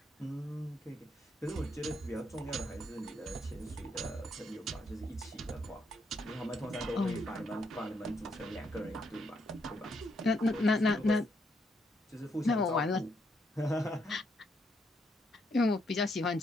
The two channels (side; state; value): both; normal; correlation 0.76